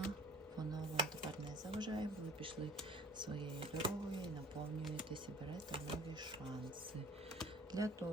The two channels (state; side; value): normal; both; correlation 0.48